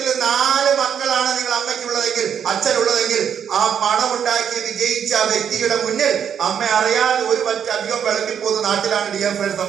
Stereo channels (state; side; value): quieter; left; 8.2 dB